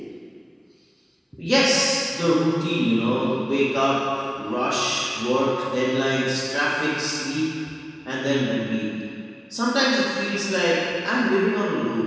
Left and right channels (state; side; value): identical; both; correlation 1.00